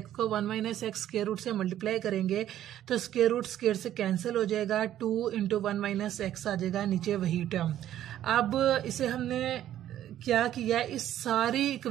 को 1 माइनस एक्स स्क्वायर रूट से मल्टीप्लाई करेंगे तो स्क्वायर रूट स्क्वायर से कैंसिल हो जाएगा, 2 इंटू 1 माइनस एक्स आ जाएगा, नीचे वही टर्म। अब इसे हमने क्या किया, इस सारी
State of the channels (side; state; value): left; quieter; 12.0 dB